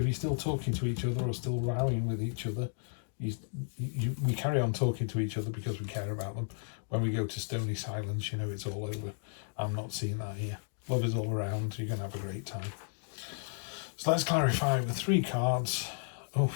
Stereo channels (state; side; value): silent; right; digital silence